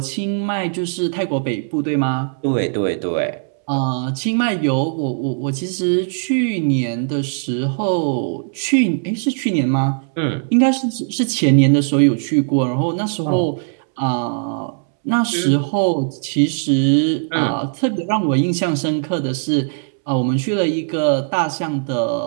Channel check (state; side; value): silent; left; 65 dB below the other